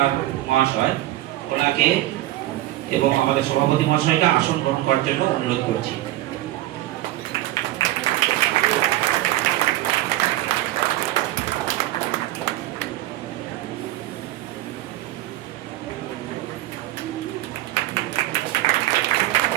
মহাশয়, ওনাকে এবং আমাদের সভাপতি মহাশয়কে আসন গ্রহণ করার জন্য অনুরোধ করছি।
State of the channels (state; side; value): quieter; left; 16.0 dB